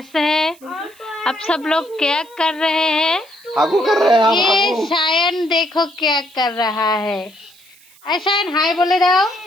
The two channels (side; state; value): right; noise; hiss, 27 dB below the sound